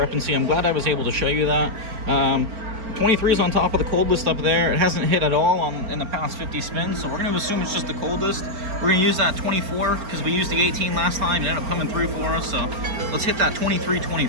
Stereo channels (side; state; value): left; late; 4.4 ms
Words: I'm glad I was able to show you that. 23 is on top of the cold list up there. It hasn't hit at all in the past 50 spins, so we're going to assume it's just the coldest. We're going to use that 24 because we used the 18 last time. It ended up coming through for us, so let's hit that